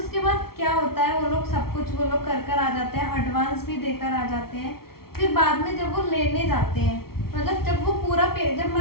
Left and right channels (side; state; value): right; late; 0.94 ms